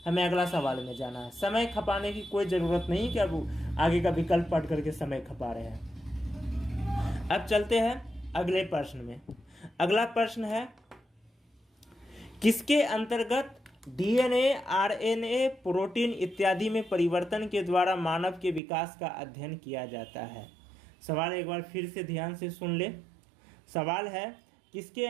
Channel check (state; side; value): drops out; left; at 18.6 s